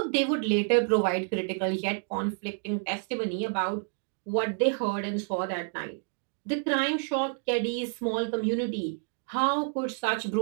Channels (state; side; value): silent; left; 58 dB below the other